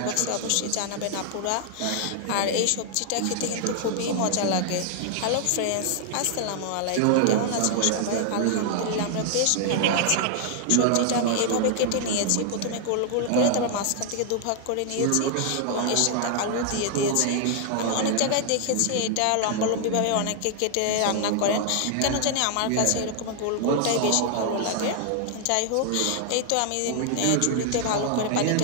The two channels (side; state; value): both; different; correlation 0.00